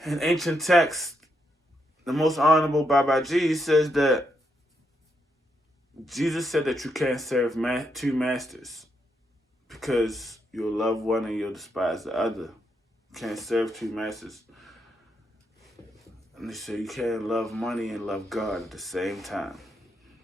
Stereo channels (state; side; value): normal; both; correlation 0.80